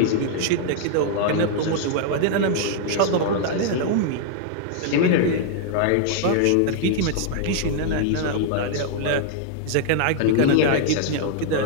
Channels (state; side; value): different; both; correlation -0.01